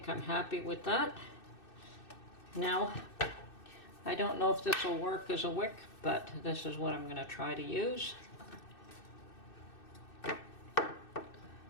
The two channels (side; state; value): right; late; 2.6 ms